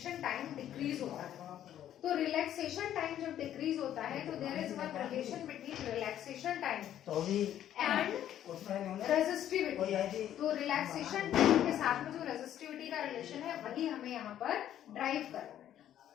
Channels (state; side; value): quieter; right; 11.2 dB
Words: टाइम डिक्रीज होता है। तो रिलैक्सेशन टाइम जब डिक्रीज होता है तो there is one relation between relaxation time and resistivity. तो रिलैक्सेशन टाइम के साथ में जो रेजिस्टिविटी का रिलेशन है वही हमें यहाँ पर ड्राइव करना है।